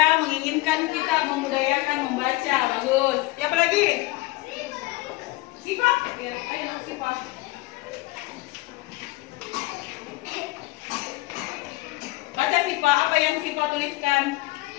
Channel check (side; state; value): right; quieter; 20.8 dB